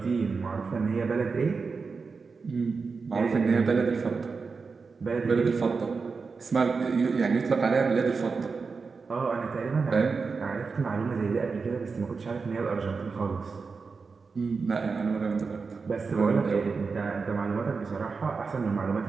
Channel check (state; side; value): quieter; left; 4.8 dB